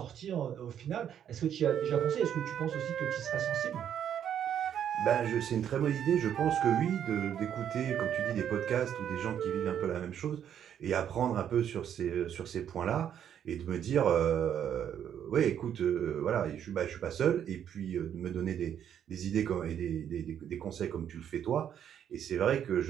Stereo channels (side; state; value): left; quieter; 9.4 dB